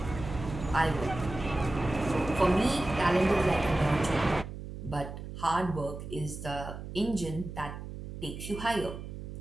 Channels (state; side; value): noise; right; hum, 10 dB below the sound